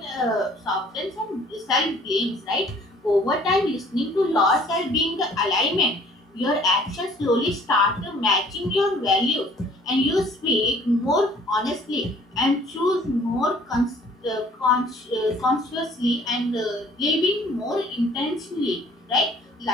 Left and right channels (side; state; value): both; normal; correlation 0.55